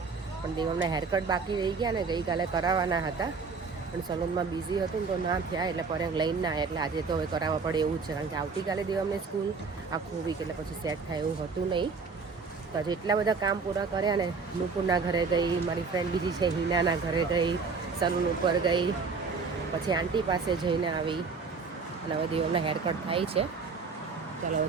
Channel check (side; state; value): left; quieter; 4.8 dB